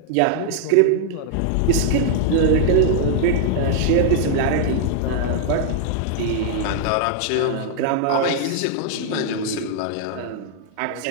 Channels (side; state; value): both; different; correlation -0.01